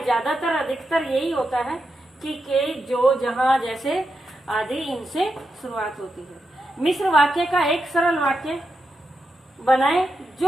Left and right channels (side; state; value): both; normal; correlation 0.86